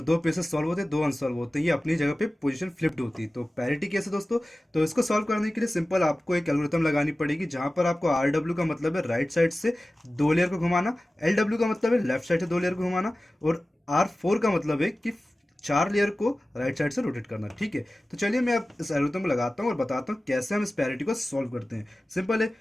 सॉल्व होते हैं, 2 अनसॉल्व होते हैं, ये अपनी जगह पे पोजीशन फ्लिप्ड होती है। तो पैरिटी कैसे दोस्तों? तो इसको सॉल्व करने के लिए सिंपल आपको एक एल्गोरिथम लगानी पड़ेगी, जहां पर आपको आर डब्ल्यू का मतलब है राइट साइड से 2 लेयर को घुमाना, एल डब्ल्यू का मतलब है लेफ्ट साइड से 2 लेयर को घुमाना, और आर 4 का मतलब है कि 4 लेयर को राइट साइड से रोटेट करना। ठीक है, तो चलिए मैं अब इस एल्गोरिथम को लगाता हूँ और बताता हूँ कैसे हम इस पैरिटी को सॉल्व करते हैं। सिंपल है,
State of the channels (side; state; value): both; normal; correlation 0.96